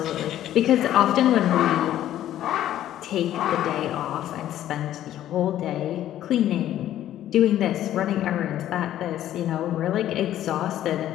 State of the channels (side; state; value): right; quieter; 12.4 dB